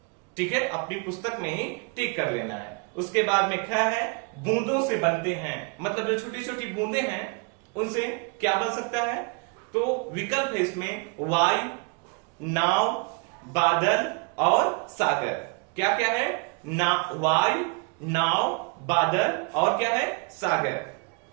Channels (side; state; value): left; quieter; 34.0 dB